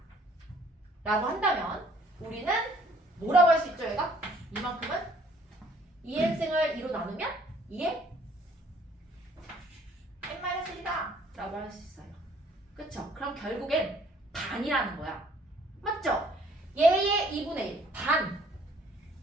라고 한다면 우리는 뭐라고 할 수 있죠 얘가? 이만큼은 2n승을 2로 나누면 2의 n-1이다 라고 할 수 있어요. 그쵸? 그럼 결국엔 반이라는 거야. 맞죠? 얘의 2분의 1 반,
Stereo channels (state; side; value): normal; both; correlation 0.59